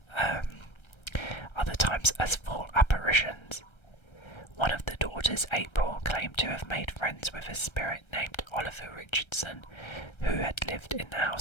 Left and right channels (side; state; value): right; late; 1.3 ms